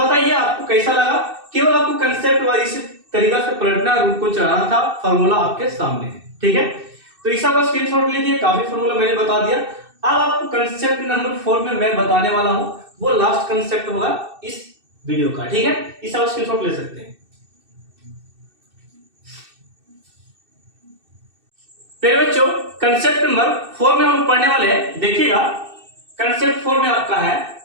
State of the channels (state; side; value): late; left; 2.6 ms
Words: आपको कैसा लगा, केवल आपको कंसेप्ट वाइज इसी तरीका से पलटना, रूट को चढ़ाना था, फॉर्मूला आपके सामने है। ठीक है, तो इस बार स्क्रीनशॉट लीजिए, काफी फॉर्मूला मैंने बता दिया। अब आपको कंसेप्ट नंबर 4 में मैं बताने वाला हूं, वो लास्ट कंसेप्ट होगा इस वीडियो का। ठीक है, इस बार स्क्रीनशॉट ले सकते हैं। मेरे बच्चों कंसेप्ट नंबर 4 में हम लोग पढ़ने वाले हैं। देखिएगा कंसेप्ट 4 में आपका है,